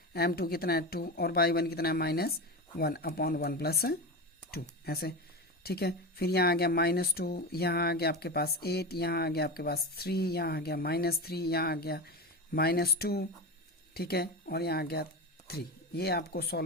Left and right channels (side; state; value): both; normal; correlation 0.22